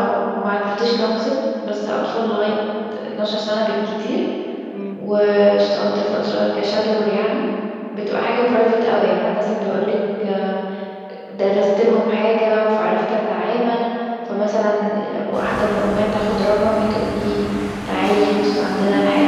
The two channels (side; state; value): both; identical; correlation 1.00